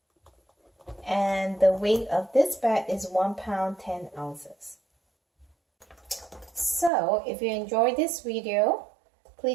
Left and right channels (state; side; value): drops out; left; at 6.9 s